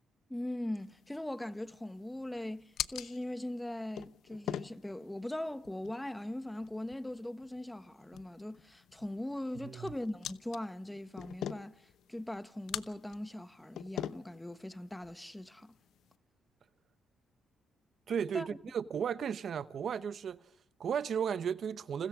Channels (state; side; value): normal; both; correlation 0.82